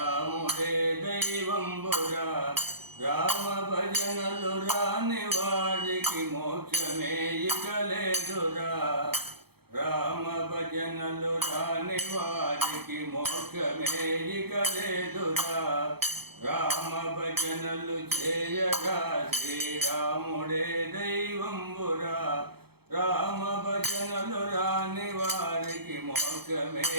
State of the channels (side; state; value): left; late; 0.96 ms